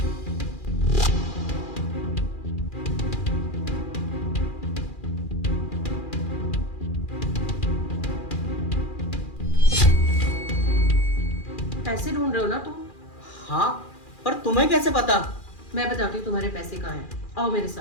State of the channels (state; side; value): late; right; 2.4 ms